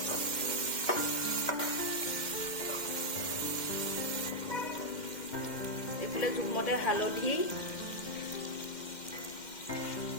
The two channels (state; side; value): late; right; 2.1 ms